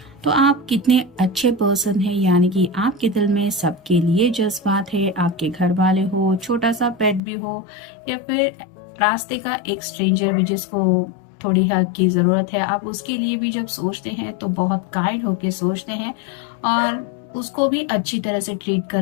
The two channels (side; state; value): right; drops out; at 7.2 s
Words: तो आप कितने अच्छे पर्सन हैं, यानी कि आपके दिल में सबके लिए जज्बात है। आपके घर वाले हो, छोटा सा पेट भी हो, या फिर रास्ते का एक स्ट्रेंजर भी जिसको थोड़ी हेल्प की ज़रूरत है, आप उसके लिए भी जब सोचते हैं तो बहुत काइंड होके सोचते हैं और उसको भी अच्छी तरह से ट्रीट